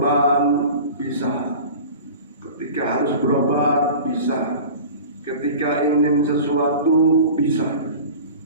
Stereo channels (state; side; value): inverted; both; correlation -0.38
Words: bisa, ketika harus berobat bisa, ketika ingin sesuatu bisa.